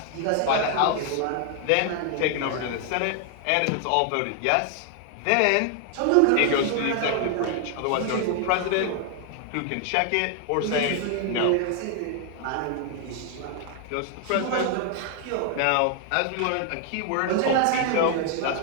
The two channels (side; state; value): both; different; correlation 0.00